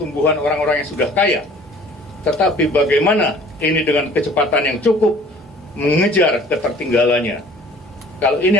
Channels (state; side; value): normal; both; correlation 0.50